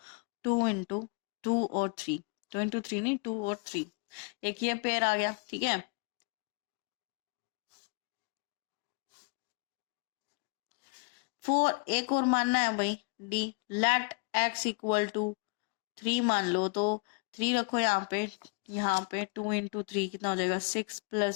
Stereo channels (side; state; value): right; quieter; 31.1 dB